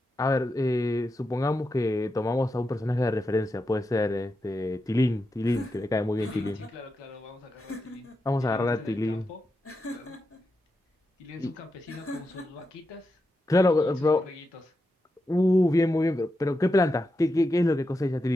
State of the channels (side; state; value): both; normal; correlation 0.88